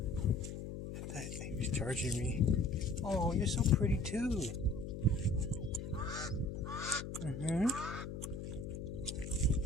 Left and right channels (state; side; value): noise; left; hum, 7 dB below the sound